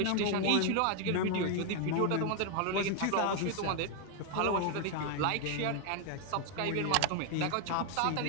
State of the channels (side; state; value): both; different; correlation 0.00